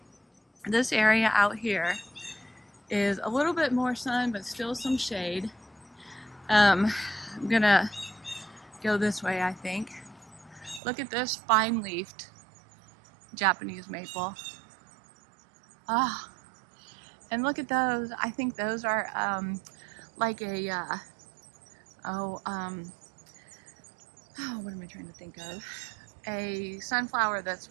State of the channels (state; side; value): drops out; left; at 10.8 s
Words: this area out here is a little bit more sun, but still some shade. I'm gonna go this way, I think. Look at this fine-leafed Japanese maple. Ah, and look at those. I think those are like a oh, what am I trying to think of? A sunflower that's